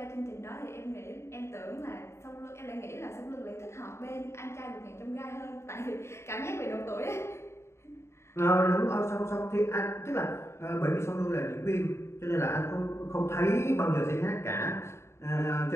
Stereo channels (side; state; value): right; late; 0.13 ms